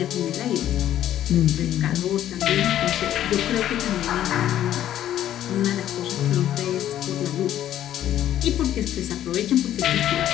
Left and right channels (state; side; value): quieter; right; 11.8 dB